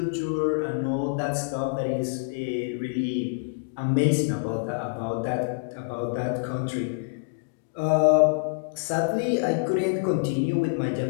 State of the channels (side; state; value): right; quieter; 36.0 dB